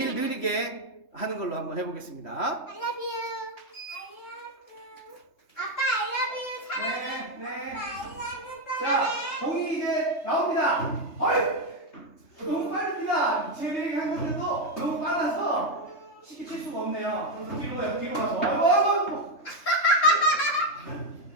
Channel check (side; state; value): right; late; 3.3 ms